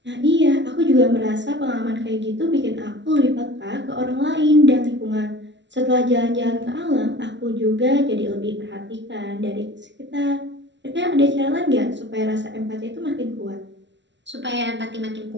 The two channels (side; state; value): left; late; 0.52 ms